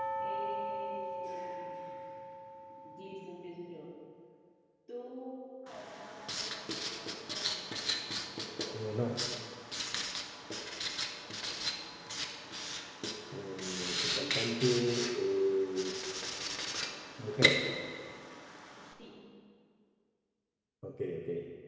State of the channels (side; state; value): both; identical; correlation 1.00